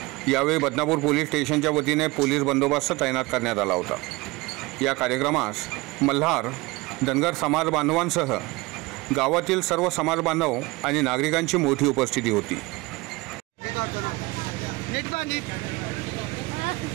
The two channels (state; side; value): quieter; left; 23.0 dB